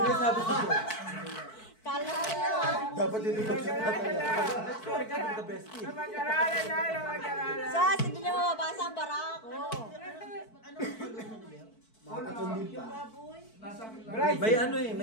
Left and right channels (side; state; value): right; late; 4.5 ms